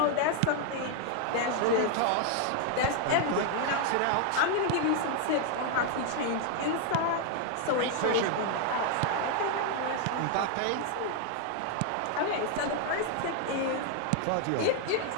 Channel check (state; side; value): different; both; correlation 0.00